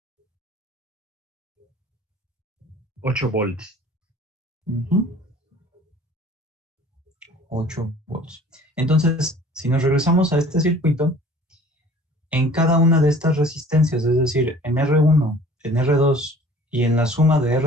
8 volts. 8 volts. Entonces, si nos regresamos a este circuito, en cada una de estas resistencias, es decir, en R1, en R2 y en la suma de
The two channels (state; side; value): normal; both; correlation 0.49